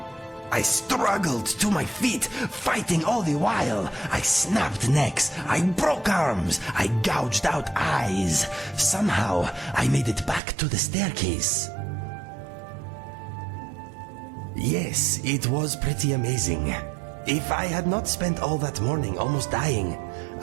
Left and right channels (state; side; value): drops out; left; at 10.4 s